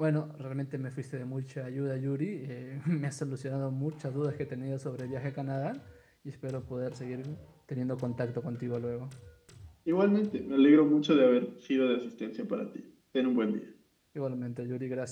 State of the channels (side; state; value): both; identical; correlation 1.00